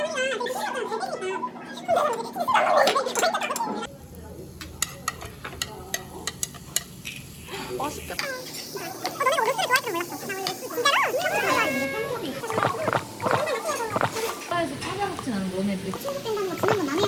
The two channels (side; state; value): both; identical; correlation 1.00